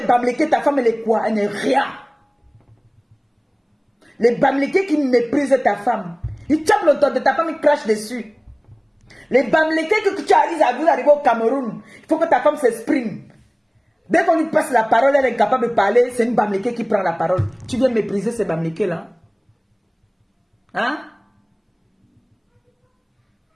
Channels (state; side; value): identical; both; correlation 1.00